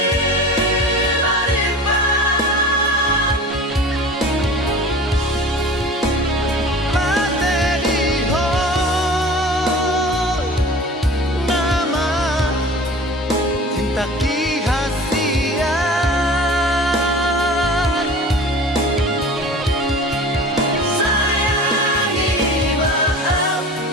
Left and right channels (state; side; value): normal; both; correlation 0.40